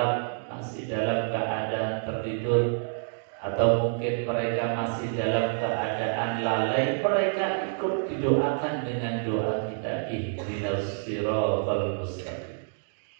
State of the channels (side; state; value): left; silent; digital silence